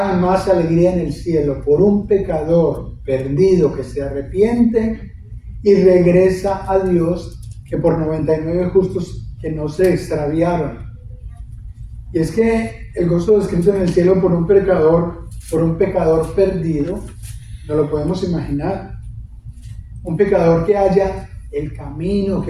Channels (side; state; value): both; identical; correlation 1.00